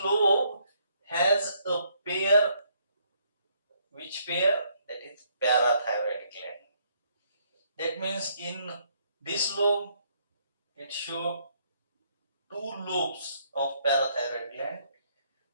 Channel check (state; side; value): inverted; both; correlation -0.70